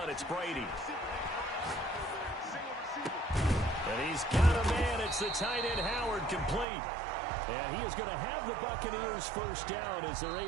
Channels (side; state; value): left; drops out; at 6.7 s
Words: it's Brady. And he's got a man. It's the tight end Howard complete. And he is going to have the Buccaneers 1st down as they're